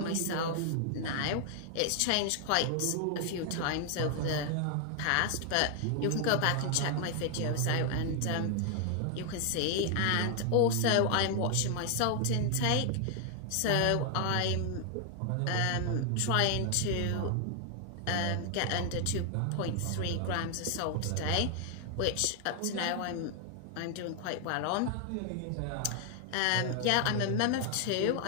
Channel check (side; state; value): both; different; correlation 0.00